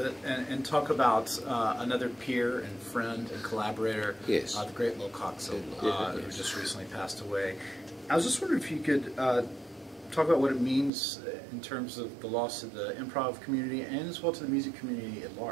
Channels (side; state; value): left; drops out; at 10.9 s